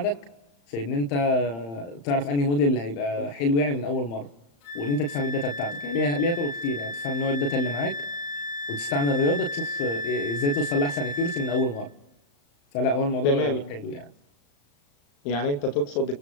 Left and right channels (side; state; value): right; late; 35 ms